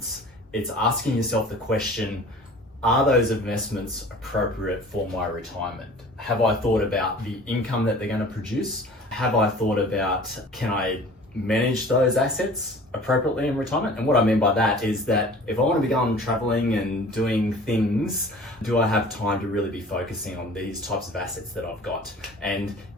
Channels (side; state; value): both; normal; correlation 0.45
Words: it's asking yourself the question, are those investments appropriate for my retirement? Have I thought about the income that they're going to produce? Have I thought about, can I manage those assets appropriately in retirement? And what I mean by that is that if I want to be going traveling and doing things, do I have time to really be focusing on these types of assets that I've got? And